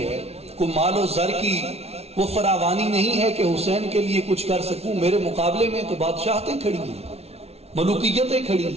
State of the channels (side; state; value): left; late; 0.30 ms